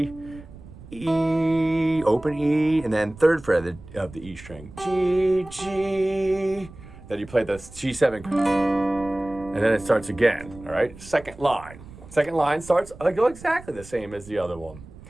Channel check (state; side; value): noise; right; rumble, 18 dB below the sound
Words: E, open E, and then 3rd fret of the E string, G, G. Then you play the G7, and then it starts again, all right? Second line starts exactly the same as the other one,